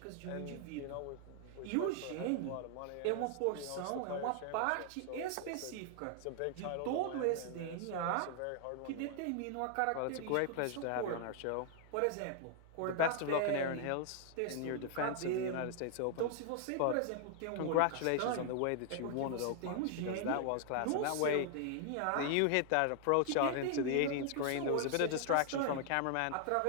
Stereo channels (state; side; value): different; both; correlation 0.00